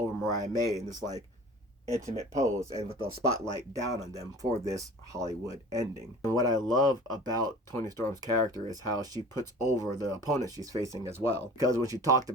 Mariah May in this like intimate pose and with the spotlight down on them for this Hollywood ending. And what I love about Toni Storm's character is how she puts over the opponent she's facing as well. Because when she talked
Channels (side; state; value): both; normal; correlation 0.43